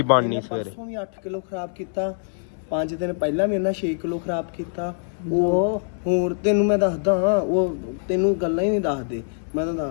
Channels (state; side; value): silent; right; 63 dB below the other